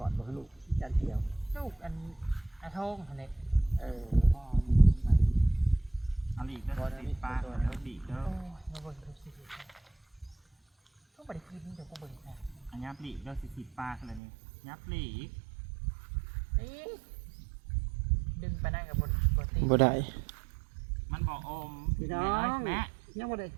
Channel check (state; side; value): drops out; left; at 14.2 s